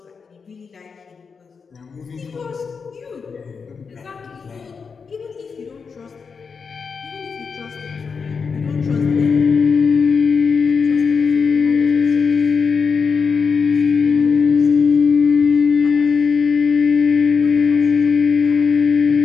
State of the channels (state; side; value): quieter; right; 5.5 dB